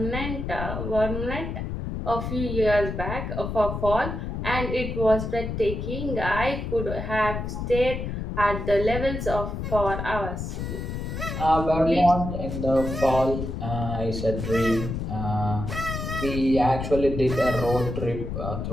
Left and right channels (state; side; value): noise; left; rumble, 4 dB below the sound